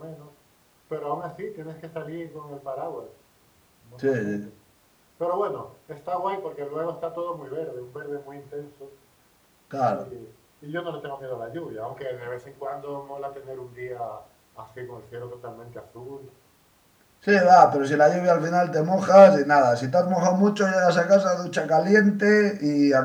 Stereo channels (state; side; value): identical; both; correlation 1.00